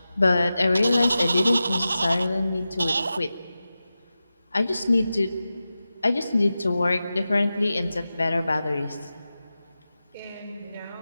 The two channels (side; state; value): both; inverted; correlation -0.93